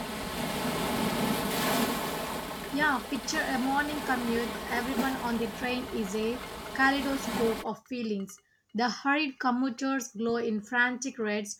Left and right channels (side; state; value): both; identical; correlation 1.00